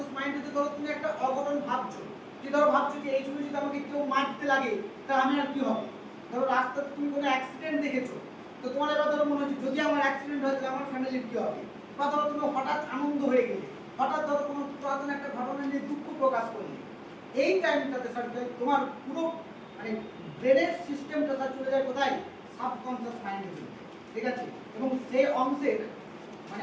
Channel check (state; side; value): identical; both; correlation 1.00